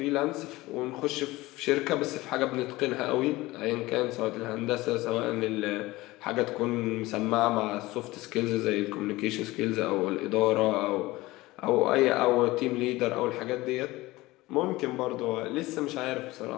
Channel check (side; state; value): right; quieter; 19.4 dB